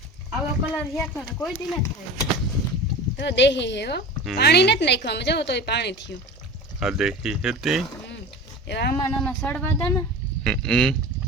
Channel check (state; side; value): normal; both; correlation 0.34